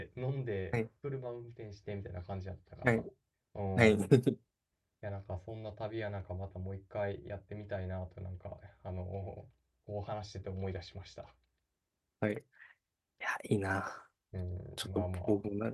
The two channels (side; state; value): both; identical; correlation 1.00